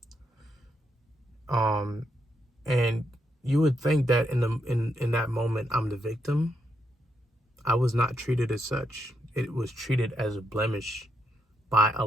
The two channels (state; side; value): normal; both; correlation 0.80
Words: And you would think that in that moment I'm the victim. I was not treated as such. It was treated as a blemish by a